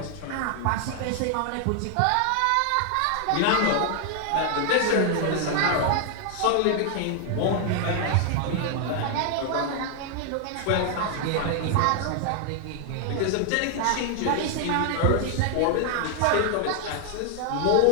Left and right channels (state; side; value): different; both; correlation 0.00